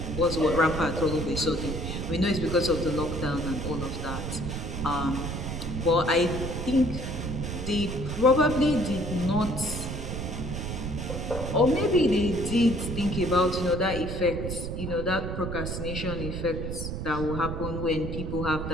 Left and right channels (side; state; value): right; noise; rumble, 5 dB below the sound